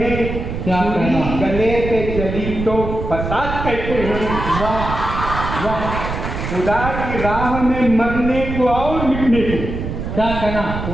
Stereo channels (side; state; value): right; noise; rumble, 5 dB below the sound